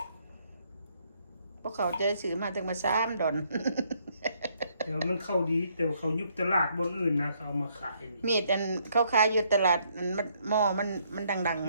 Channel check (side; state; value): both; inverted; correlation -0.70